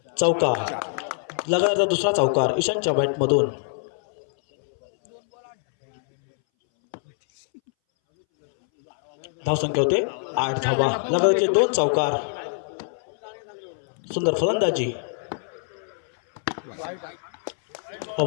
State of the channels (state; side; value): silent; right; 61 dB below the other